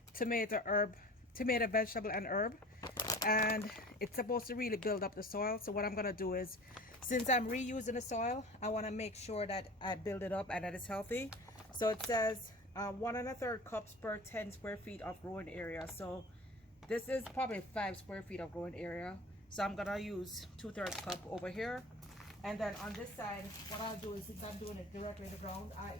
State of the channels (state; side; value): normal; both; correlation 0.40